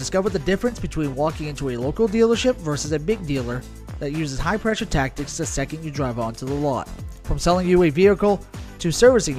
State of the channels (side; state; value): both; identical; correlation 1.00